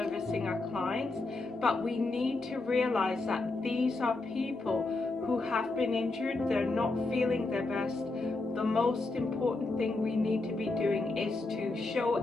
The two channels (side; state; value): right; quieter; 3.3 dB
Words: our clients. But we need to realize that these are people who have been injured, they're not feeling their best. The most important thing we need to be doing is to show